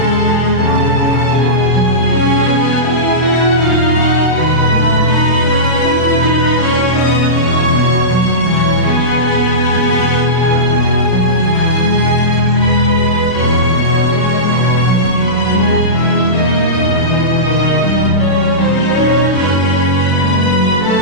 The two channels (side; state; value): right; late; 32 ms